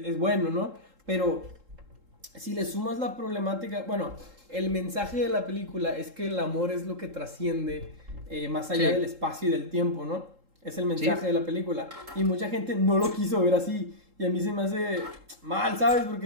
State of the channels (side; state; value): left; late; 3.7 ms